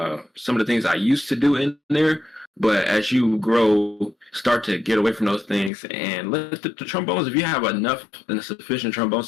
some of the things I used to do in there, but as you grow, start to get away from those things and let the trombones. If you have enough and a sufficient trombone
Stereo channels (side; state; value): right; drops out; at 5.7 s